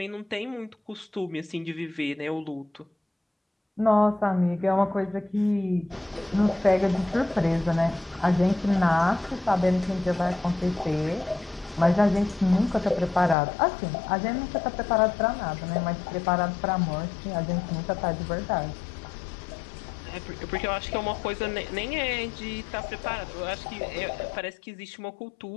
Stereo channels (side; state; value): right; drops out; at 13.4 s